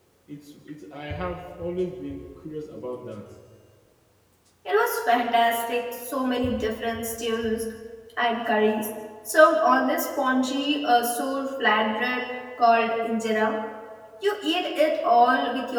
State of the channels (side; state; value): both; identical; correlation 1.00